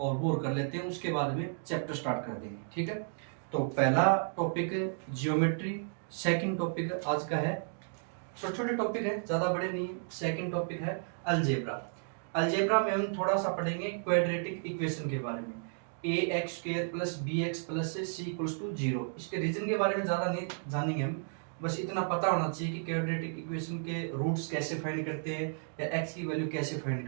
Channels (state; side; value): silent; left; digital silence